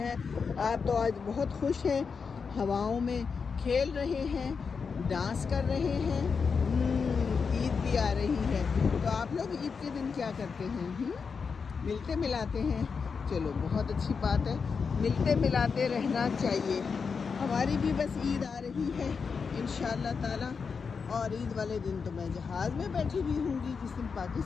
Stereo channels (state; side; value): quieter; right; 5.5 dB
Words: आप तो आज बहुत खुश हैं, हवाओं में खेल रहे हैं, डांस कर रहे हैं। ईद भी आ रही है, तो आप लोग ईद के दिन क्या करते हैं? मिलते मिलाते हैं। चलो बहुत अच्छी बात है, मिलते मिलाते रहना चाहिए। हमारी भी बस ईद आ रही है इंशाअल्लाह ताला, और ईद वाले दिन तो मैं जहाज़ में बैठी हुई हूँगी। जिस दिन